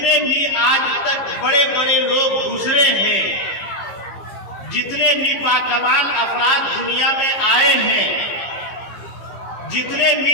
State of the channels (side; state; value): right; late; 15 ms